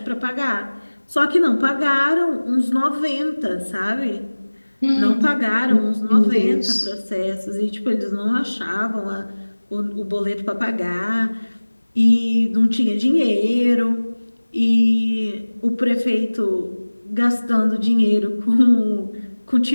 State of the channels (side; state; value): both; inverted; correlation -1.00